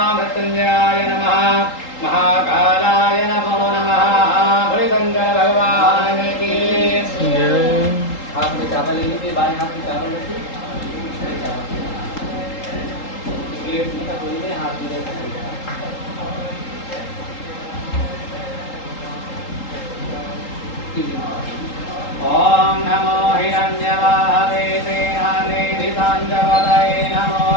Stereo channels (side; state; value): right; late; 3.8 ms